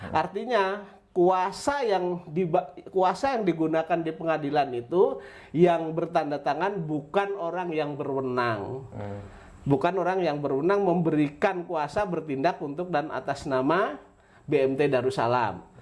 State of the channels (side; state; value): both; identical; correlation 1.00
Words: Artinya kuasa yang digunakan di pengadilan itu yang bertanda tangan bukan orang yang berwenang. Bukan orang yang berwenang memberikan kuasa bertindak untuk dan atas nama BMT Darussalam.